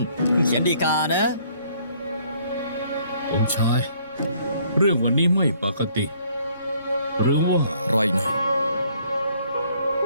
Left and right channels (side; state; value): both; inverted; correlation -0.63